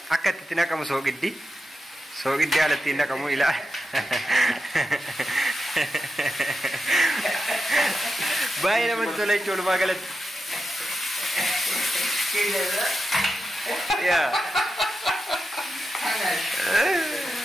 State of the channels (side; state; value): both; normal; correlation 0.89